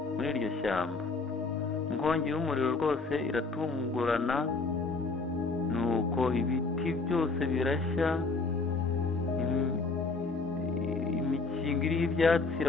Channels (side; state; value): right; quieter; 3.9 dB